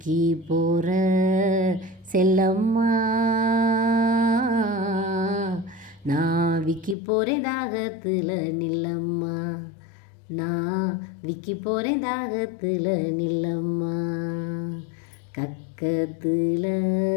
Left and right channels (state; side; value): drops out; right; at 7.0 s